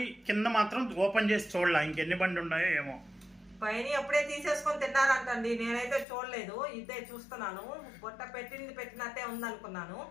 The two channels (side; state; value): right; drops out; at 6.1 s